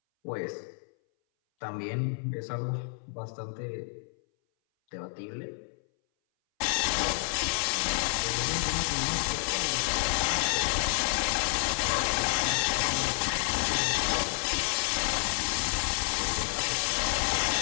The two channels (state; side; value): silent; right; 58 dB below the other